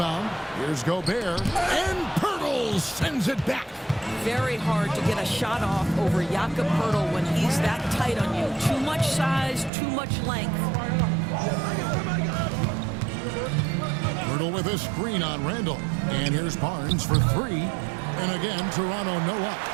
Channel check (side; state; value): left; drops out; at 9.7 s